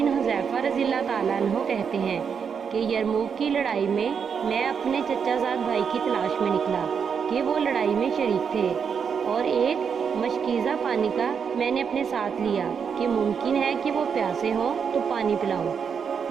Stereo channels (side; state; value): left; quieter; 6.7 dB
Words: हुज़ैफ़ा रज़ियल्लाहु ताला अन्हो कहते हैं कि यरमूक की लड़ाई में मैं अपने चचाज़ाद भाई की तलाश में निकला कि वो लड़ाई में शरीक थे, और एक मशकीज़ा पानी का मैंने अपने साथ लिया कि मुमकिन है कि वो प्यासे हों तो पानी पिलाऊं।